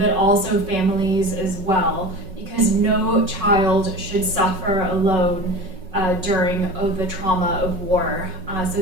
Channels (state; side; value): late; left; 5.4 ms